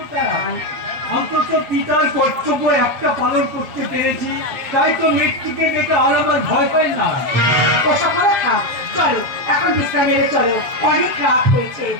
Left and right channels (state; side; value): late; left; 7.8 ms